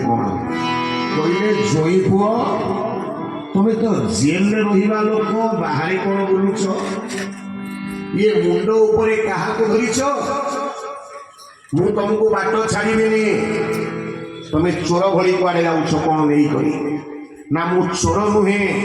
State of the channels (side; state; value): both; identical; correlation 1.00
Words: କଣ କହିଲେ? ଜୋଇଁ ପୁଅ ତମେ ତ ଜେଲରେ ରହିବା ଲୋକ, ବାହାରେ କଣ ବୁଲୁଛ? ଇଏ ମୁଣ୍ଡ ଉପରେ କାହାକୁ ଧରିଛ? ମୁଁ ତମକୁ ବାଟ ଛାଡ଼ିବିନି। ତମେ ଚୋର ଭଳି କୁଆଡ଼େ ଯାଉଛ କ'ଣ ନେଇକରି? ନା ମୁଁ ଚୋର ନୁହେଁ,